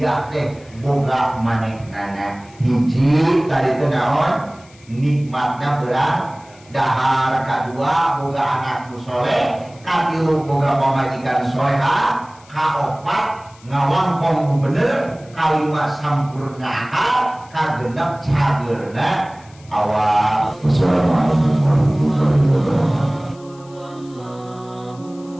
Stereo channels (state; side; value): noise; left; hiss, 27 dB below the sound